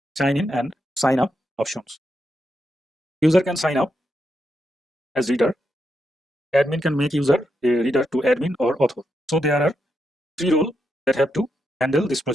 sign in and sign up options. User can sign up as reader. Admin can make user a reader to admin or author. So there are 3 roles that have to handle this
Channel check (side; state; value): both; normal; correlation 0.83